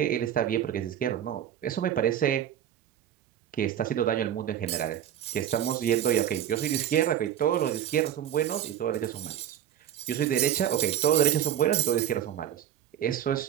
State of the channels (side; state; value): left; quieter; 10.7 dB